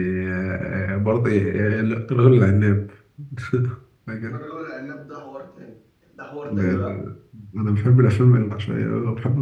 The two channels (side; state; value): both; identical; correlation 1.00